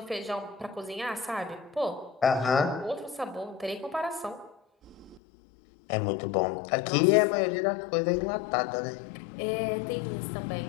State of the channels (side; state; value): right; drops out; at 5.2 s